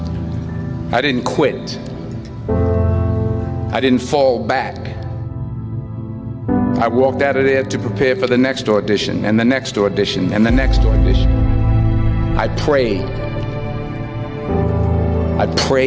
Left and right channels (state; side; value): identical; both; correlation 1.00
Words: I didn't quit. I didn't fall back. I walked out of there to prepare for the next audition, and the next audition, and the next audition. I prayed. I